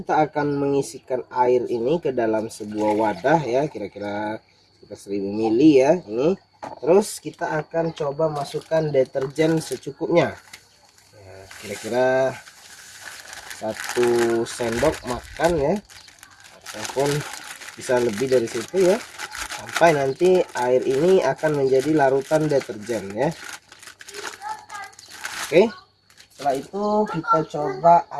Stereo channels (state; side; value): identical; both; correlation 1.00